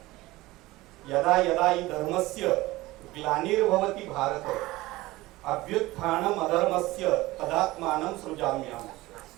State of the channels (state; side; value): quieter; left; 19.1 dB